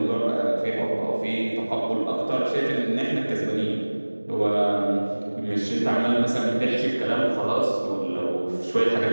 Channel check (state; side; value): inverted; both; correlation -1.00